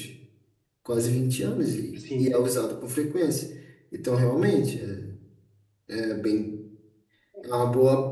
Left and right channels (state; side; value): identical; both; correlation 1.00